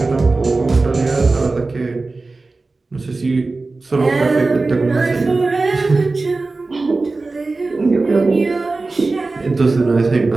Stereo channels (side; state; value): left; quieter; 3.6 dB